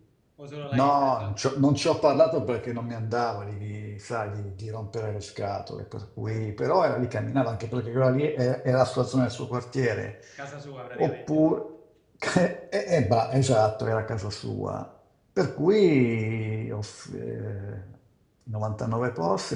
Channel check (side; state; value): both; identical; correlation 1.00